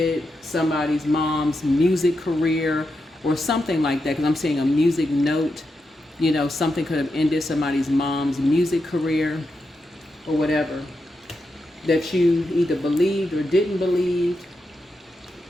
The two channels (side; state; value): both; normal; correlation 0.86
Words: somebody's mom's music career or something like that, because I'm seeing a music note. You know, something could have ended somebody's mom's music career or whatever that you either believed or didn't believe.